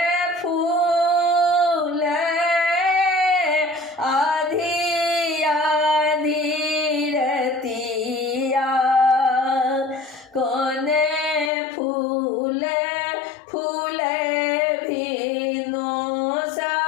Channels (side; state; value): right; drops out; at 11.5 s